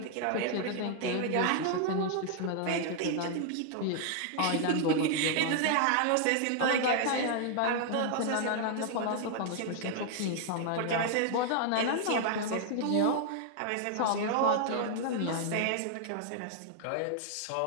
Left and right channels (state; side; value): different; both; correlation 0.00